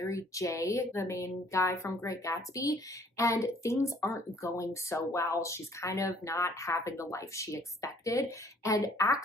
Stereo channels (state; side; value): normal; both; correlation 0.59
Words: Jay, the main guy from Great Gatsby, and things aren't going so well. She's kind of not having the life she expected. And